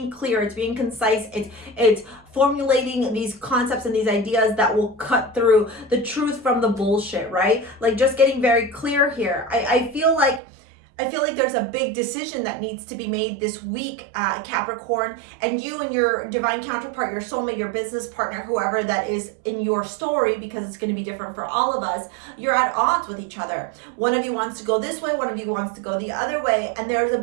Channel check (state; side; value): drops out; left; at 10.4 s